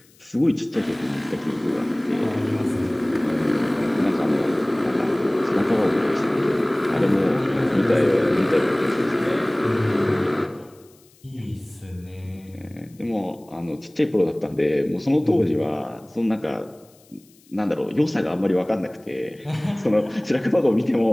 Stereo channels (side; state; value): left; noise; hiss, 30 dB below the sound